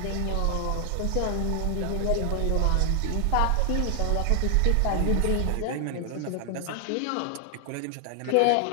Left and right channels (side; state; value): both; different; correlation 0.00